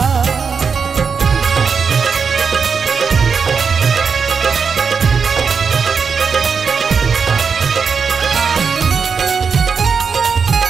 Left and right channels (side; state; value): left; quieter; 5.8 dB